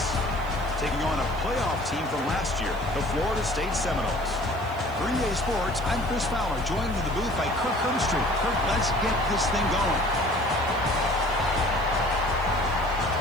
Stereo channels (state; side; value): noise; right; hiss, 23 dB below the sound